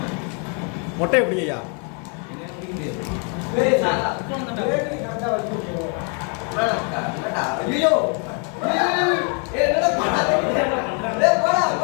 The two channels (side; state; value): right; quieter; 39.7 dB